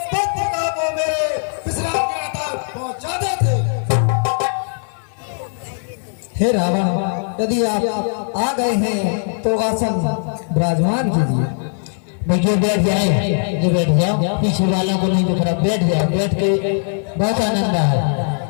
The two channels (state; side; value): silent; right; 57 dB below the other